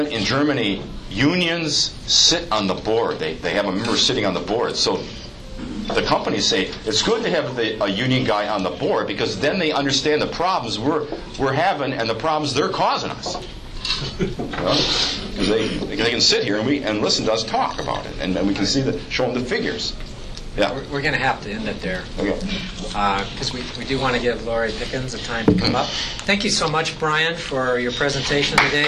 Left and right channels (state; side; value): identical; both; correlation 1.00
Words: Germany, unions sit on the board. They have a member sitting on the board. So the companies say it's good to have a union guy on the board because then they understand the problems we're having and the problems they're causing us. Because they can sit here and listen to us talk about it, and we can show them the figures. Yeah, we're going to have to end it there. Okay. Because we do want to give Lorri Pickens a time to come up. Thank you so much, Brian, for your presentation